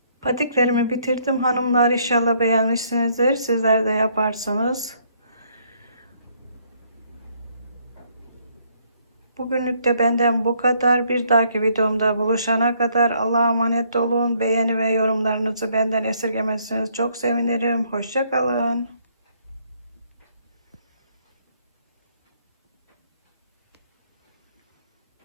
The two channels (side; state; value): both; inverted; correlation -0.67